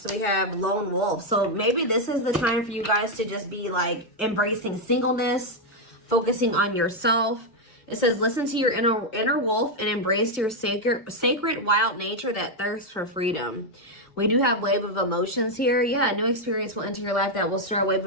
we have lone wolf. So maybe this is the time for you guys to just be like embracing singleness, focusing on yourself. It says listen to your inner wolf and embrace your sacred wild nature that thirsts for freedom. We do have wave of emotions here. Yeah, a new experience will enter your life that will stir a wave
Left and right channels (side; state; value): both; normal; correlation 0.01